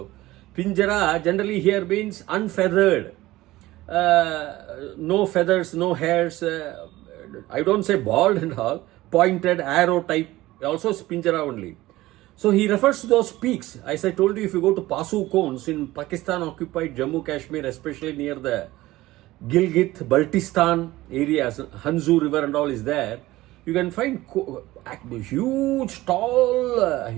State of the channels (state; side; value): quieter; left; 17.6 dB